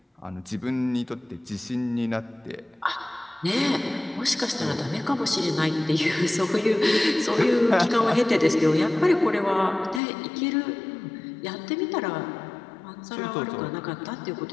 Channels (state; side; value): drops out; right; at 10.0 s